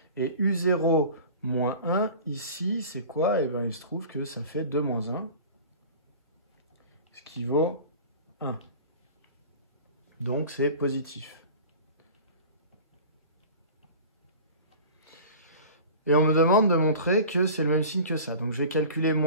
Et u0 moins 1, ici, c'est quoi? Eh bien, il se trouve que ça fait 2 moins 1, ce qui vaut 1. Donc, c'est positif. Et on me demande de montrer que c'est le même signe que ça. Donc, je vais calculer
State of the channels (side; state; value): both; inverted; correlation -0.39